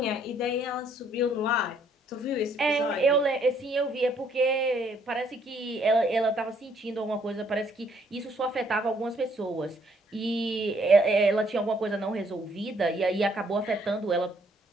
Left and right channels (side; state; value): both; normal; correlation 0.66